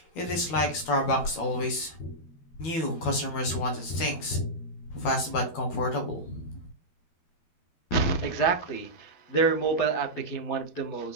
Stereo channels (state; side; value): late; right; 12 ms